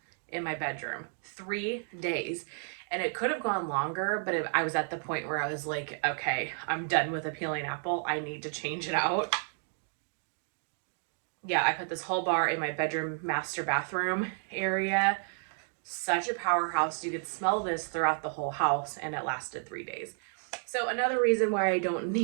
in my bedroom. 3 days. And it could have gone longer, but I was at the point where I was like, okay, I'm done with Appealing Apple. I need to change it out. Yeah, I put this whole bar in my bedroom master bathroom area. Such a powerhouse. You could smell this throughout the whole house, and it lasted 3 days. So another reason why I don't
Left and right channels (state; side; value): silent; left; 57 dB below the other